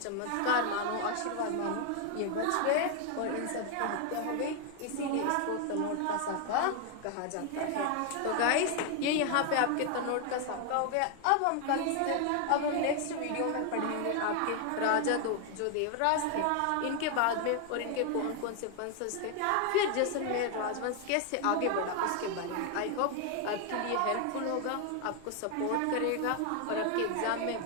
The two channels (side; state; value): both; different; correlation 0.00